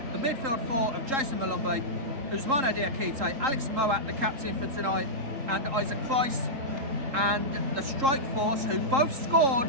the midfield 4 of Jason Malumbi, Ousmane Diakite, Alex Moat, the captain for tonight, and Isaac Price, and the strike force, who both scored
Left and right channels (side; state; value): left; late; 3.7 ms